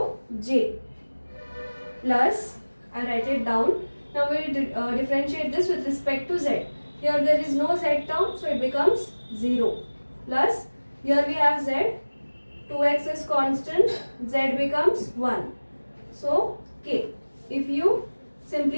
j plus, I write it down. Now we will differentiate this with respect to z. Here there is no z term, so it becomes 0 plus, here we have z, 2x is constant, z becomes 1. So k. If you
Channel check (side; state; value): both; inverted; correlation -1.00